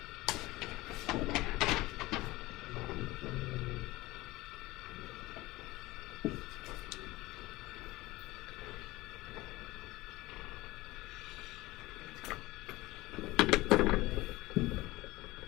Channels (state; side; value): quieter; right; 19.6 dB